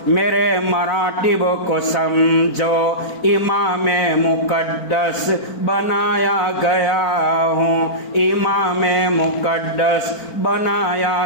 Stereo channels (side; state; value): right; late; 4.4 ms